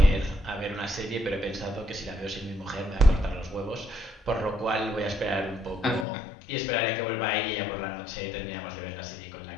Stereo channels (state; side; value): drops out; right; at 6.1 s